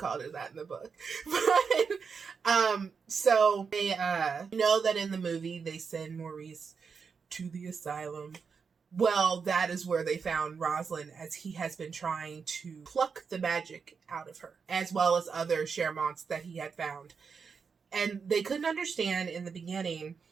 it that in the book. But, so they, know that in the movie they send Maurice to the asylum. Well, that is where they found Rosalind, as he has been trying to pluck the magic out of her, as well as other Charmants that he had found. And they couldn't understand in the beginning,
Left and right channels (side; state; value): left; quieter; 5.7 dB